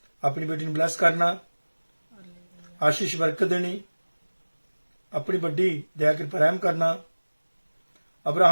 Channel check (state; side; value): inverted; both; correlation -1.00